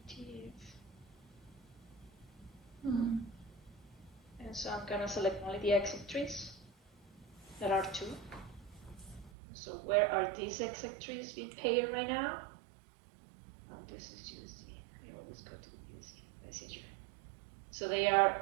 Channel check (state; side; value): drops out; left; at 9.3 s